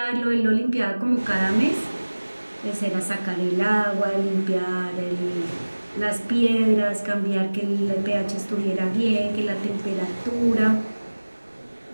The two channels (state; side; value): inverted; both; correlation -1.00